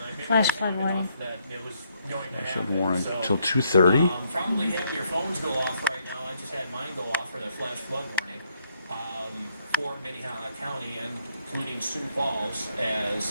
Flash flood warning. that it was going to Should happen, warrant so, till 2:30. Probably have your phones go off right now. I just had mine go off for the flash flood warning for Minnehaha County and including Sioux Falls,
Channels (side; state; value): both; inverted; correlation -0.72